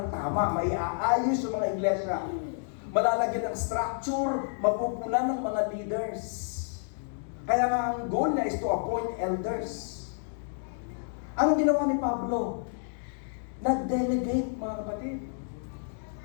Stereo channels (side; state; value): right; silent; digital silence